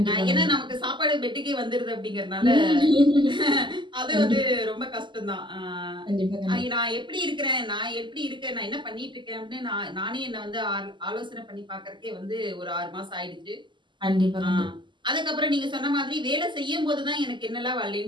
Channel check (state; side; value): late; left; 0.23 ms